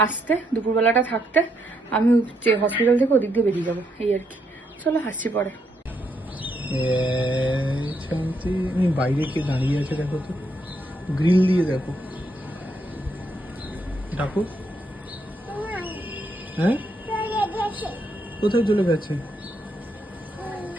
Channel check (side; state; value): both; normal; correlation 0.77